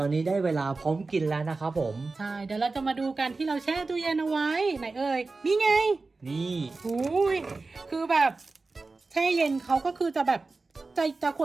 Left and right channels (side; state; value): left; quieter; 3.7 dB